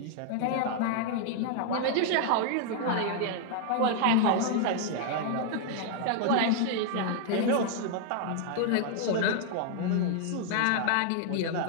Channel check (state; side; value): different; both; correlation 0.00